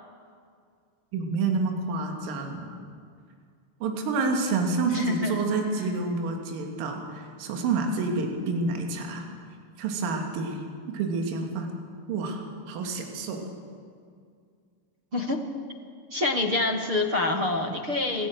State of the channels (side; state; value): left; late; 6.7 ms